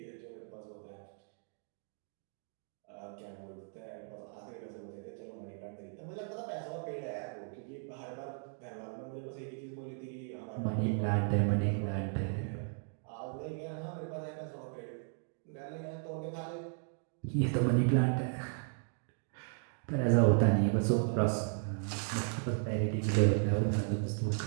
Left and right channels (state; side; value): silent; left; 54 dB below the other